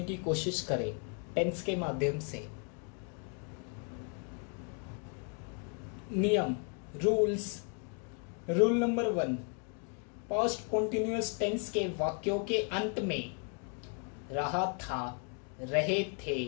की कोशिश करें टेंस के माध्यम से। नियम rules. Rule number 1, past continuous tense के वाक्यों के अंत में रहा था, रहे थे,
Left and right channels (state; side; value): quieter; right; 38.7 dB